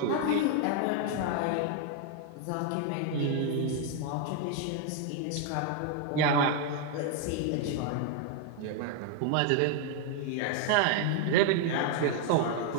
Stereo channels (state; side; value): different; both; correlation 0.00